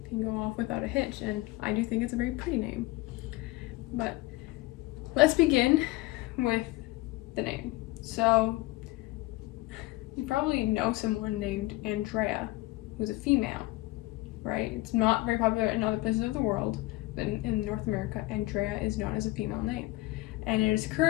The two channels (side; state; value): right; quieter; 19.8 dB